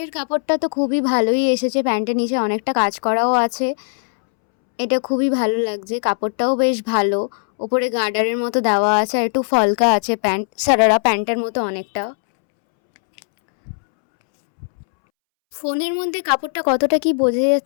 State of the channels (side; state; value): right; silent; 67 dB below the other